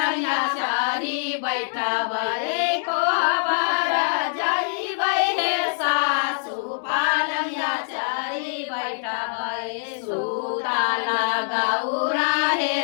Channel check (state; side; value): silent; right; digital silence